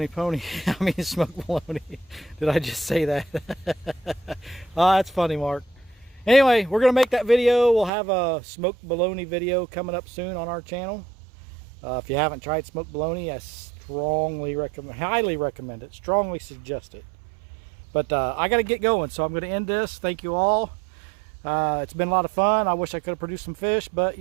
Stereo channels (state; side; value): drops out; left; at 7.9 s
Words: pony. I mean, smoked bologna. Did I just say that? Oh, that's funny, Mark. Anyway, we're gonna make that video. We'll have a smoked bologna video coming up soon on our channel. If you haven't tried smoked bologna, I highly recommend it. Strongly suggest it. But I got to get going, so I'm going to end this. Thank you all. It's been a lot of fun. I wish I could have produced some fish, but